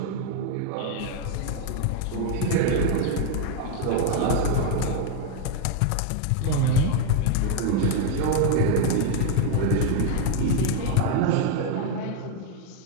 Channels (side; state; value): both; different; correlation 0.00